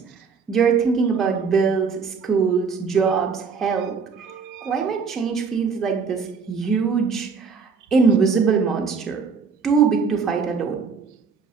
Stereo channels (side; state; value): left; quieter; 5.5 dB